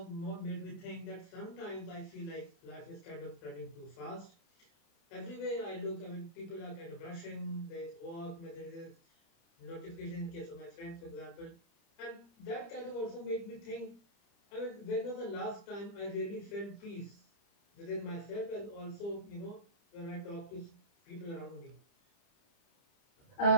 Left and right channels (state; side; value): late; right; 30 ms